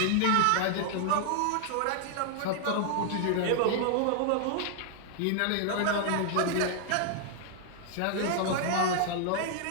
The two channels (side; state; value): both; different; correlation 0.00